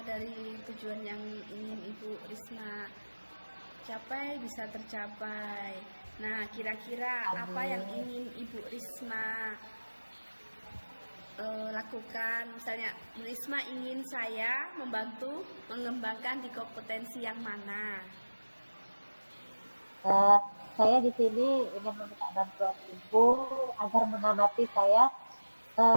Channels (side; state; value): both; inverted; correlation -1.00